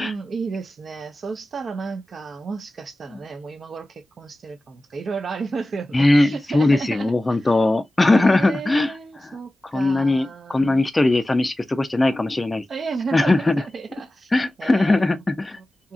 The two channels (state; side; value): normal; both; correlation 0.95